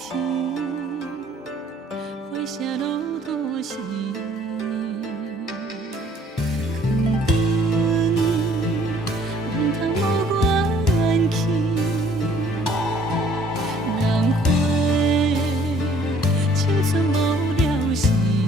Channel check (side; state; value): both; normal; correlation 0.58